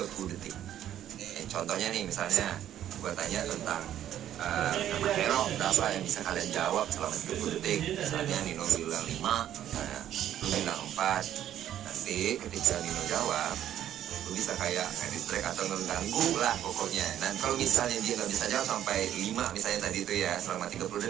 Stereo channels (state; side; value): quieter; left; 11.3 dB